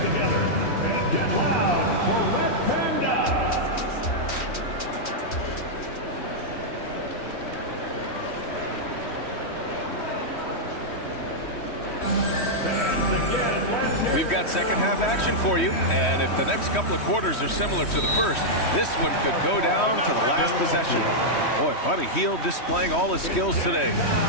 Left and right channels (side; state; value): right; late; 3.1 ms